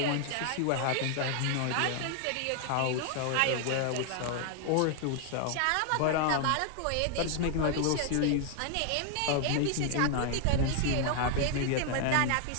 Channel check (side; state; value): both; different; correlation 0.00